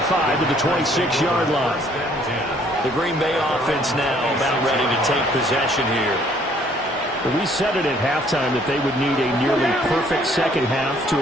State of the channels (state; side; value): normal; both; correlation 0.62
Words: to the 26-yard line. The Green Bay offense now about ready to take possession here. We said it at halftime that they would need a nearly perfect second half to